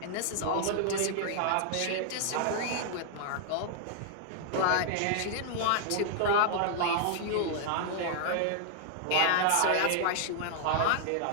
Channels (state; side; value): different; both; correlation -0.01